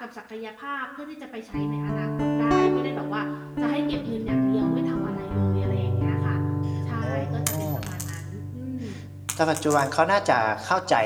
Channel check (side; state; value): both; identical; correlation 1.00